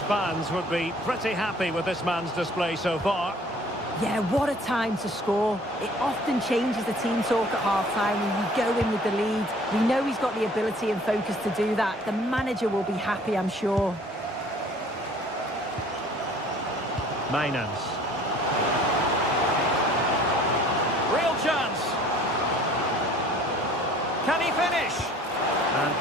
fans would be pretty happy with this man's display so far. Yeah, what a time to score. It often changes the team talk at half-time when you go in with the lead. We know he's got the ability and focus to do that. The manager will be happy, I'm sure. Mijnans. Real chance. Can he finish? And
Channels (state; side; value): normal; both; correlation 0.53